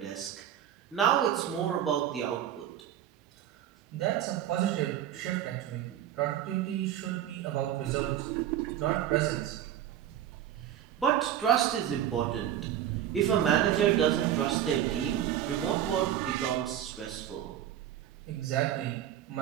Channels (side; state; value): left; quieter; 10.9 dB